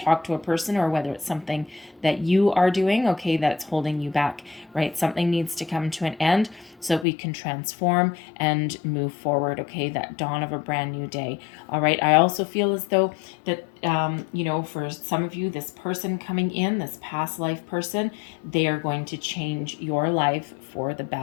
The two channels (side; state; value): right; drops out; at 7.1 s